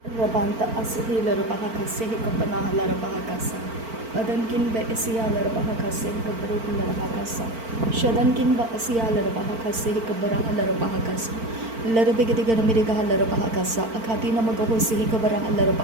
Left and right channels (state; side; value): late; left; 4.4 ms